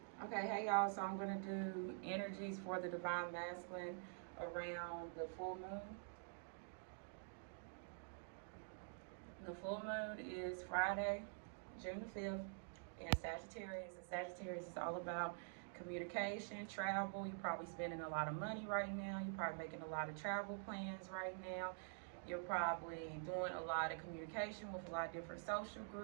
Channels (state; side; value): silent; left; digital silence